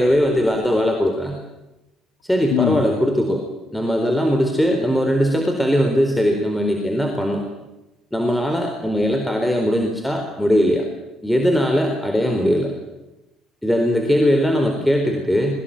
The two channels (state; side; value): normal; both; correlation 0.85